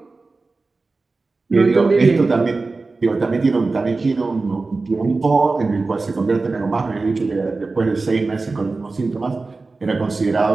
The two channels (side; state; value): left; quieter; 3.7 dB